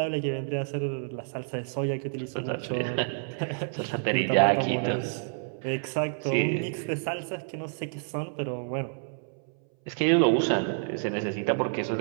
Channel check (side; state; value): left; silent; 59 dB below the other